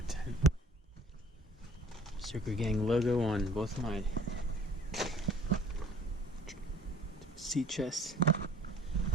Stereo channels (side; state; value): both; normal; correlation 0.52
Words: Berserker Gang logo on both of mine. Sea chests.